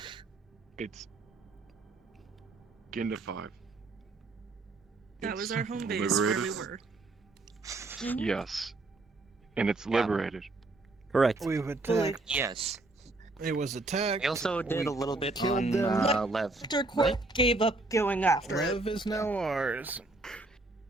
It's Ginda 5. That was our home base liberated? where we were. Mhm. Yes. And it's liberated. Correct. We've attacked. Yes. It was attacked. We also did a little bit killed on them. Lev. After Court gave up going after it. Lev is now ours.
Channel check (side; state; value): left; quieter; 3.1 dB